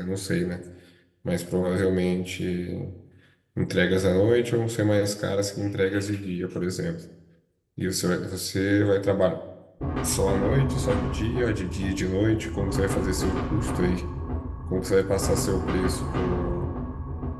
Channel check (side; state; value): both; identical; correlation 1.00